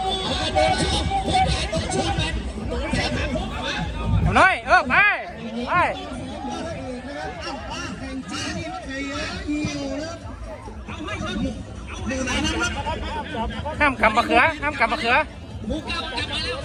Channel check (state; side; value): identical; both; correlation 1.00